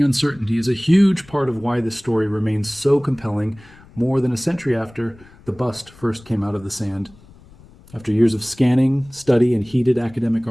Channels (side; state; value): left; noise; rumble, 24 dB below the sound